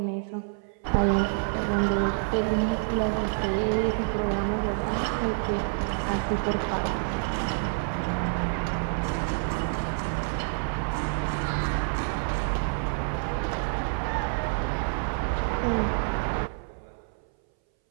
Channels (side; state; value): left; silent; 60 dB below the other